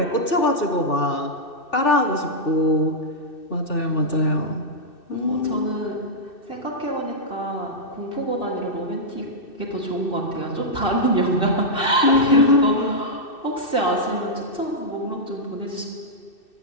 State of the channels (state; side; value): late; right; 2.6 ms